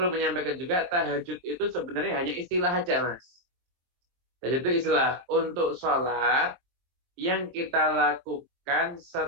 menyampaikan juga tahajud itu sebenarnya hanya istilah aja, Mas. Tahajud itu istilah untuk sholat yang kita lakukan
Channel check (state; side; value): late; left; 23 ms